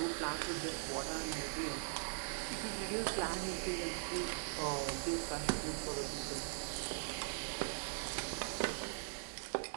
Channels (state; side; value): silent; left; digital silence